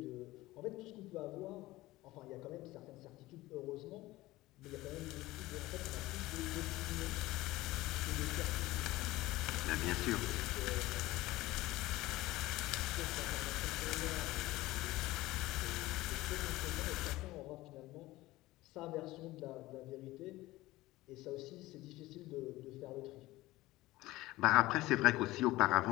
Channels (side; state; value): right; quieter; 18.3 dB